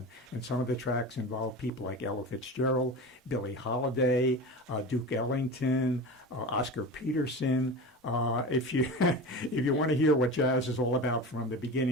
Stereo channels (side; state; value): both; normal; correlation 0.29